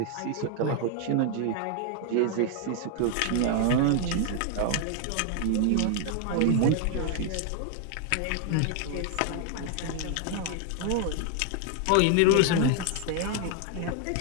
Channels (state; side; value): different; both; correlation 0.00